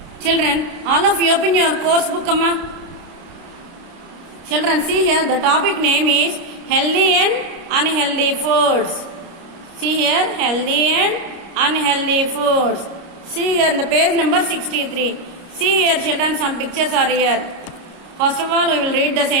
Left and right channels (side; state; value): left; late; 29 ms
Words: Children, all of you open your course book, Amma. Children, see here, the topic name is healthy and unhealthy foods. See here, healthy and unhealthy foods. See here, the page number 63. See here, children, some pictures are here. First of all, we will read the